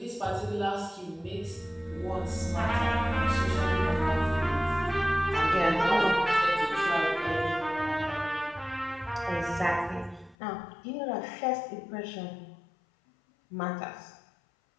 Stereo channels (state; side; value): drops out; right; at 10.4 s